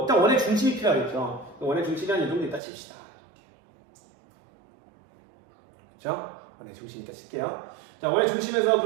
원의 중심이 필요하겠죠. 원의 중심이 한 이 정도 있다 칩시다. 그렇죠? 원의 중심 있다 칠게요. 자, 원의 중심에서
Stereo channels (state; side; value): drops out; left; at 2.6 s